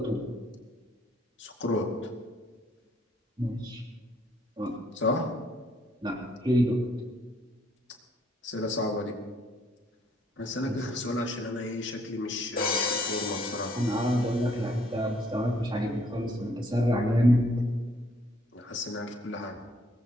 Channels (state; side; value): normal; both; correlation 0.66